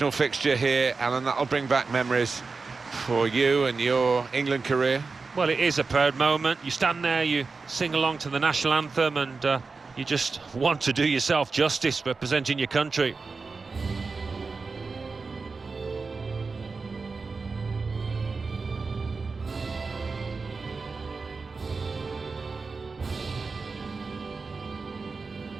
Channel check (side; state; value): left; quieter; 4.3 dB